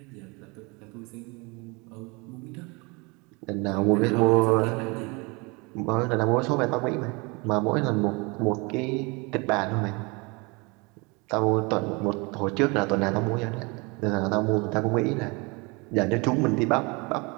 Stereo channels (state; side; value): quieter; left; 28.3 dB